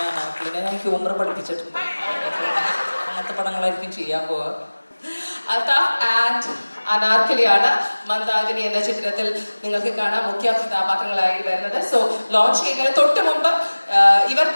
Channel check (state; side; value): inverted; both; correlation -1.00